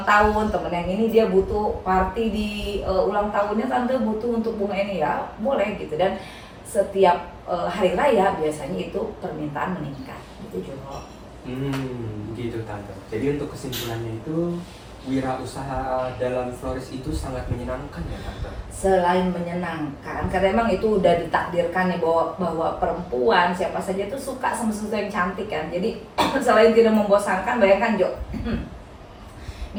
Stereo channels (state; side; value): identical; both; correlation 1.00